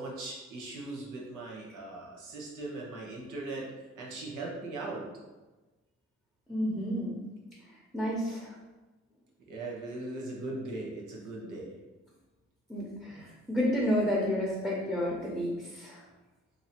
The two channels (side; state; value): both; normal; correlation 0.58